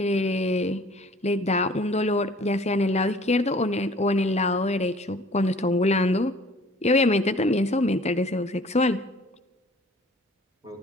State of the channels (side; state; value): both; normal; correlation 0.51